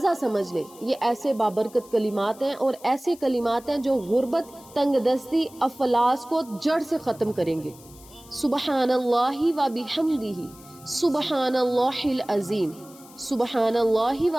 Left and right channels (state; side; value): noise; left; hiss, 22 dB below the sound